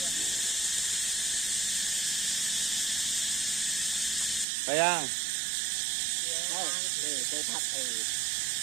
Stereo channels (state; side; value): drops out; left; at 4.5 s